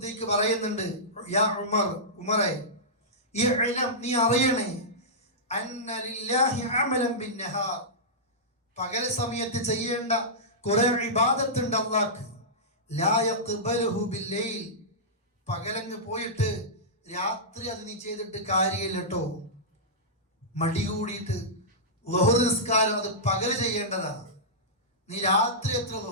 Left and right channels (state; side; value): normal; both; correlation -0.14